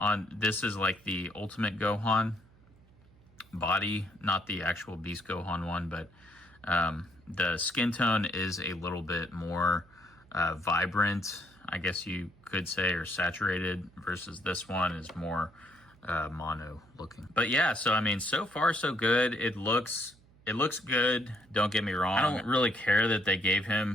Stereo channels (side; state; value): right; noise; hum, 28 dB below the sound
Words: this is like the Ultimate Gohan body, not the actual Beast Gohan one, but the skin tone is a little bit more vibrant, I guess you could say, or saturated, versus this one is more mono looking. But yeah, so I mean, so far so good. It looks good, don't get me wrong. I don't really care that they gave